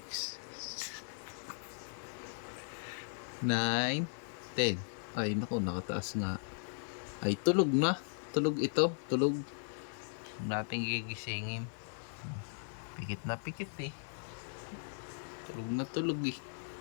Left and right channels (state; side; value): silent; right; digital silence